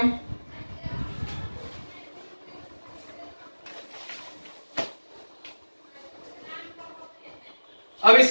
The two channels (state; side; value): inverted; both; correlation -1.00